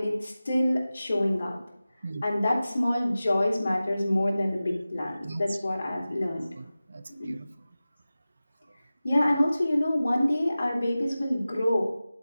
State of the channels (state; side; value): inverted; both; correlation -0.96